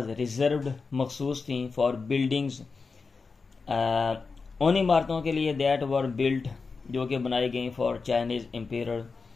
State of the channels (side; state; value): right; quieter; 4.6 dB